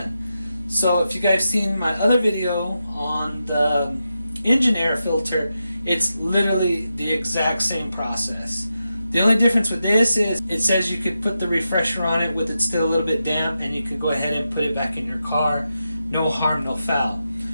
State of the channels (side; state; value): both; inverted; correlation -0.88